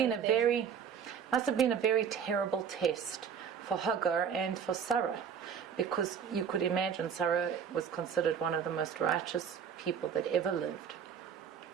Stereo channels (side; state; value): left; quieter; 7.4 dB